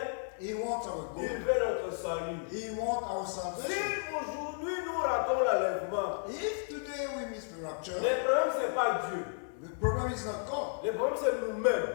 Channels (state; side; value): silent; right; 56 dB below the other